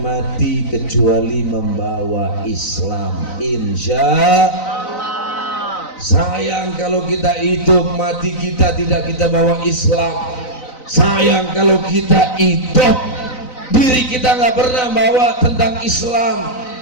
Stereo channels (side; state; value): right; late; 4.0 ms